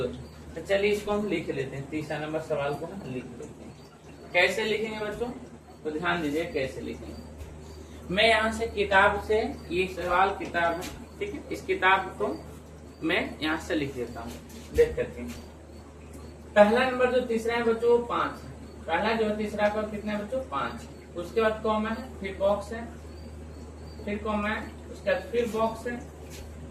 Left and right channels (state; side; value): identical; both; correlation 1.00